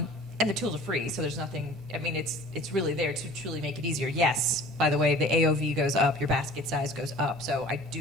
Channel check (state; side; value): normal; both; correlation 0.45